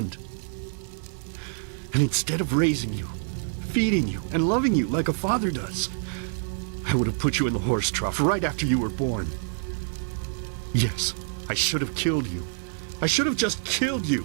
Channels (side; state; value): left; silent; 60 dB below the other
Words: And instead of raising you, feeding you, and loving you like a father does, I would have put you in the horse trough right after you were born. Yes, I should have killed you. I should have just killed you.